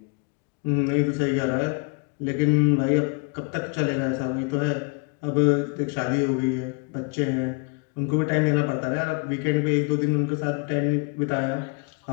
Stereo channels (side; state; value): right; quieter; 34.9 dB